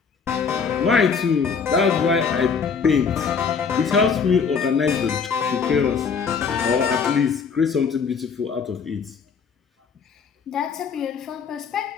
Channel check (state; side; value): quieter; right; 5.9 dB